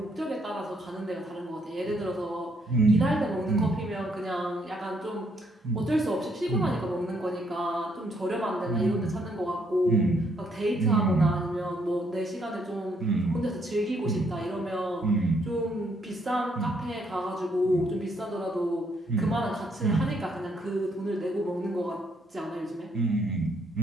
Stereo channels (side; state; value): both; normal; correlation 0.71